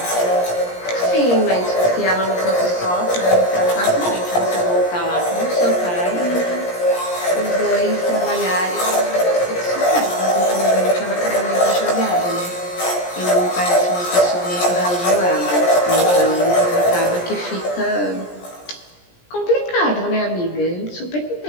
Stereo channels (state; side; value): late; right; 17 ms